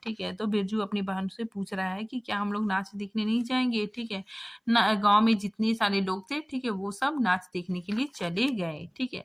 ठीक है, तो बिरजू अपनी बहन से पूछ रहा है कि क्या हम लोग नाच देखने नहीं जाएंगे। ठीक है, गांव में जितने सारे लोग थे, ठीक है, वो सब नाच देखने के लिए चले गए। ठीक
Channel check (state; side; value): identical; both; correlation 1.00